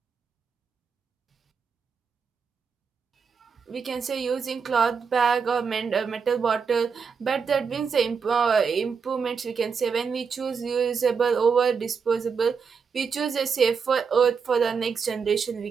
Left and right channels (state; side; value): quieter; left; 5.9 dB